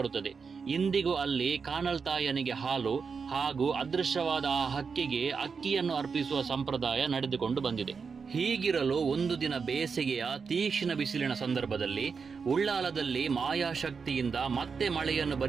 ಇಂದಿಗೂ ಅಲ್ಲಿ ಕಾನಲ್ತಾಯನಿಗೆ ಹಾಲು ಹಾಗೂ ಅದೃಶ್ಯವಾದ ಆ ಹಕ್ಕಿಗೆ ಅಕ್ಕಿಯನ್ನು ಅರ್ಪಿಸುವ ಸಂಪ್ರದಾಯ ನಡೆದುಕೊಂಡು ಬಂದಿದೆ. ಹೀಗಿರಲು ಒಂದು ದಿನ ಬೇಸಿಗೆಯ ತೀಕ್ಷ್ಣ ಬಿಸಿಲಿನ ಸಂದರ್ಭದಲ್ಲಿ ಉಳ್ಳಾಲದಲ್ಲಿ ಮಾಯಾಶಕ್ತಿಯಿಂದ ಮತ್ತೆ ಮಳೆಯನ್ನು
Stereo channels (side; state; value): left; quieter; 5.5 dB